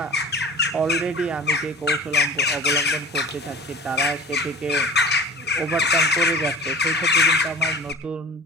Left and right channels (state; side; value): normal; both; correlation 0.39